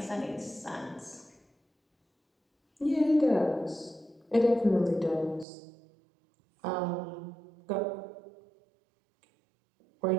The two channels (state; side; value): drops out; left; at 5.5 s